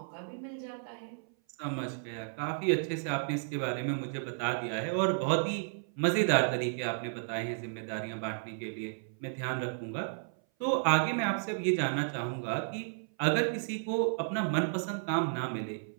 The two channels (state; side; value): silent; left; 56 dB below the other